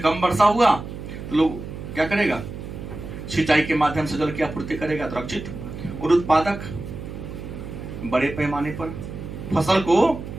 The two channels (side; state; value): right; noise; hum, 10 dB below the sound